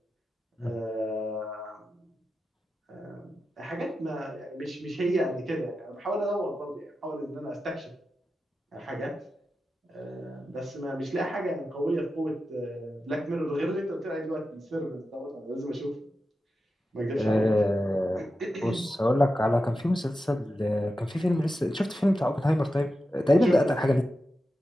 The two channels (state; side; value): normal; both; correlation 0.91